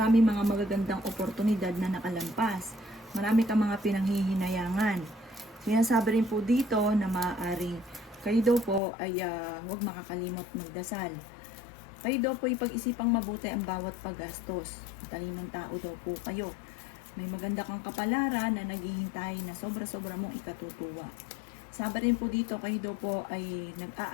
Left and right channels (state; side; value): drops out; right; at 8.8 s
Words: mga magagandang oportunidad na nakalampas. Marami ka mga pinanghihinayangan. Sinasabi rin po dito na maaaring kayo daw po ay huwag makakalimot magdasal. Kayo daw po ipag-isipang mabuti ang bawat paggastos. Matalinong tao daw po kayo. May maganda kang kapalaran na naghihintay na sobra-sobra mong ikatutuwa. Sabi rin po dito, kayo daw po ay